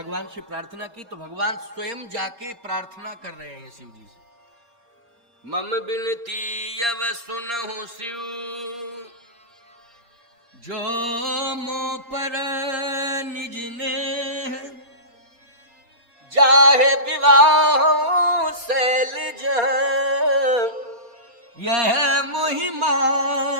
से प्रार्थना की, तो भगवान स्वयं जाके प्रार्थना कर रहे हैं शिव जी से। मम बिनती अब सुनहु शिव, जो मो पर निज ने, जाहे विवाह शैलज, यह मुहि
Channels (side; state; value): left; late; 4.3 ms